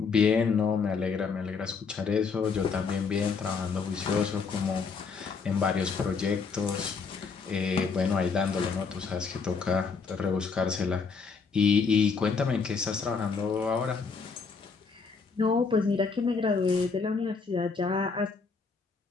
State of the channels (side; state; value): right; quieter; 5.1 dB